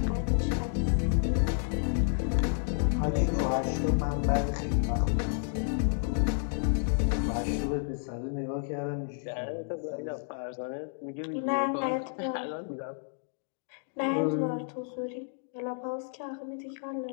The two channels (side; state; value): right; silent; digital silence